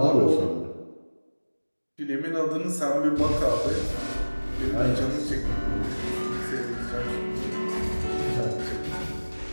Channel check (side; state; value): both; inverted; correlation -1.00